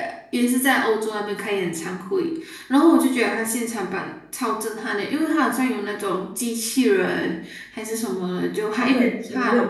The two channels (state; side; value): identical; both; correlation 1.00